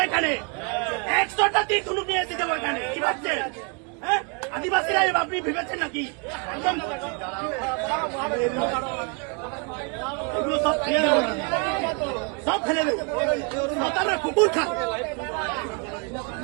এখানে, 100টা তীর ধনুক নিয়ে এসে যাবো এখানে। কি ভাবছেন? হ্যাঁ, আদিবাসীরা আপনি ভেবেছেন নাকি? এগুলো সব ফেলে দেবো, সব ফেলে দেবো। সাঁওতালরা কুকুর খায়,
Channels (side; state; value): left; quieter; 34.5 dB